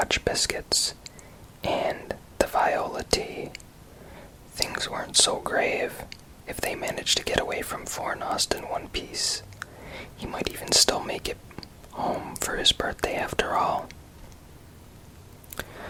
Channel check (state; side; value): identical; both; correlation 1.00